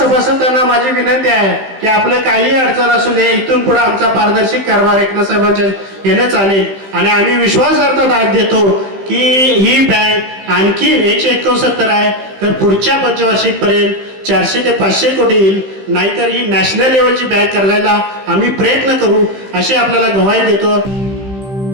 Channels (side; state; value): left; late; 15 ms